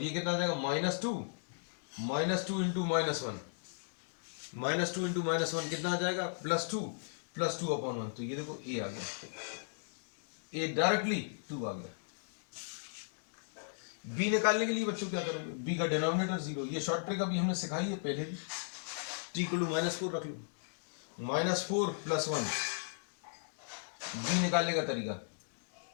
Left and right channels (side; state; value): right; silent; digital silence